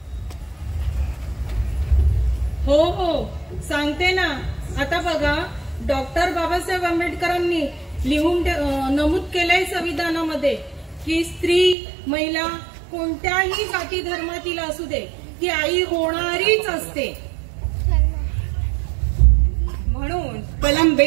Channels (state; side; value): drops out; left; at 11.8 s